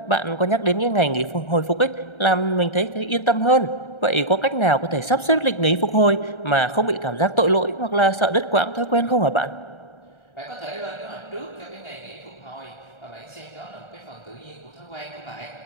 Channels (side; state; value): right; late; 1.3 ms